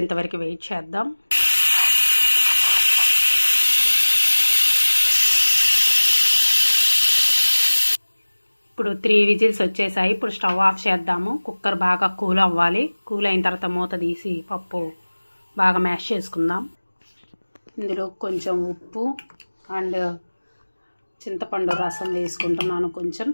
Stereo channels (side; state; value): both; inverted; correlation -1.00